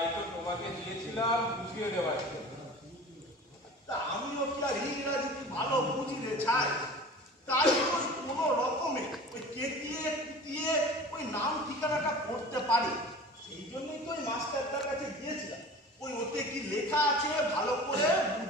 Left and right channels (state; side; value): normal; both; correlation 0.39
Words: তো তোমাকে দিয়েছিলাম বুঝিয়ে দেওয়ার জন্য। তা আমিও কি আর ইংরাজি ভালো বুঝি রে ছাই, তাই ওই কোনো রকমে ওই কেটিয়ে কুটিয়ে ওই নাম ঠিকানাটা পড়তে পারি। সেই জন্যই তো ওই মাস্টারটার কাছে গিয়েছিলাম, ওই ওতে কি লেখা আছে ভালো করে